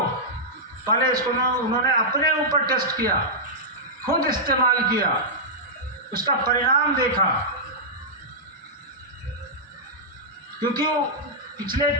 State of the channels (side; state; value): both; normal; correlation -0.11